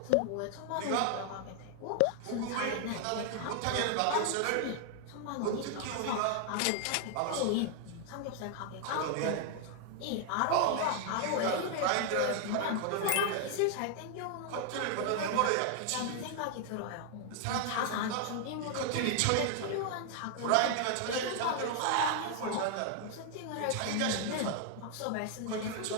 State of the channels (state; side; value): different; both; correlation 0.00